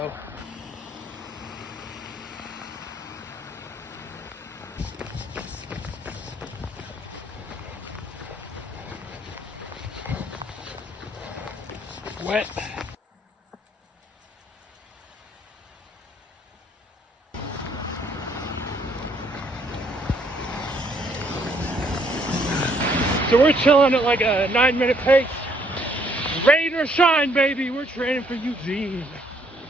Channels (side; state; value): both; normal; correlation 0.66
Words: Wet. So we're chilling at like a 9-minute pace. Rain or shine, baby. We're training for Eugene